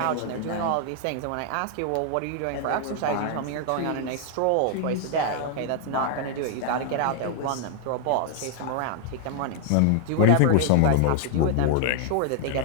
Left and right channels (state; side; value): different; both; correlation 0.00